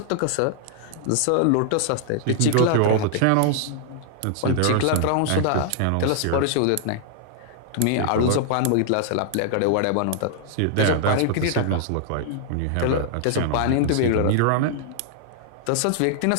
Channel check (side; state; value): both; different; correlation -0.01